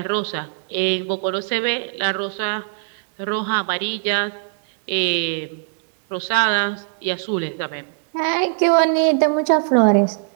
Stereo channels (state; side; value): silent; left; digital silence